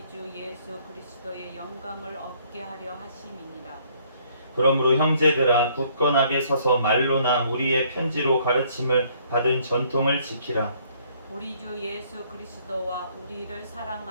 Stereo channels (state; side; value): inverted; both; correlation -0.63